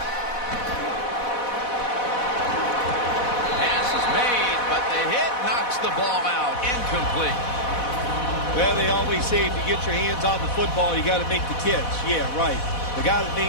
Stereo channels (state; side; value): late; right; 4.1 ms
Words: Pass is made, but the hit knocks the ball out. Incomplete. Well, they always say if you get your hands on the football, you got to make the catch. Yeah, right. The guy that